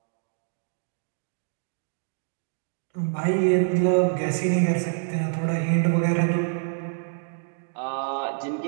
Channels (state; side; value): silent; left; digital silence